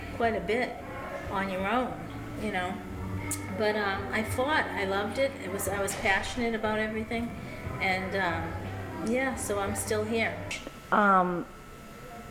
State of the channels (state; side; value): identical; both; correlation 1.00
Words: quite a bit on your own, But I fought. I loved it. I was passionate about everything, and so I'm still here.